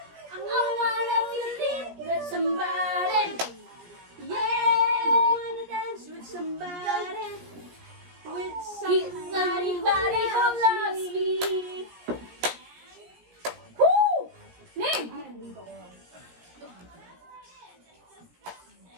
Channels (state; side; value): late; left; 17 ms